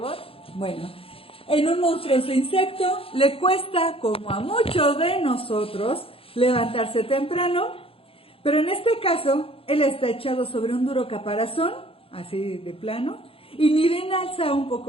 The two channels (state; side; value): late; right; 0.27 ms